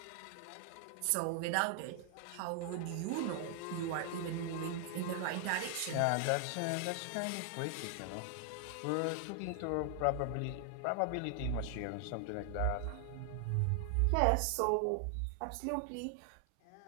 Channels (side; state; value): both; different; correlation 0.00